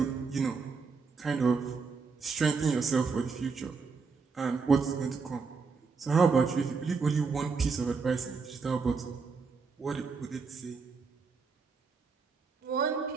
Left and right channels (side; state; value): left; quieter; 4.9 dB